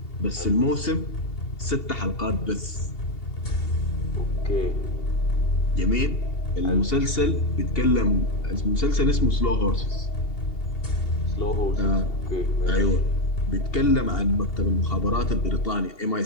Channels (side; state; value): right; late; 2.8 ms